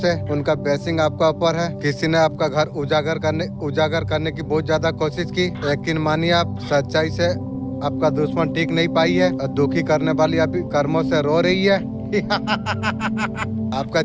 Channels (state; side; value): identical; both; correlation 1.00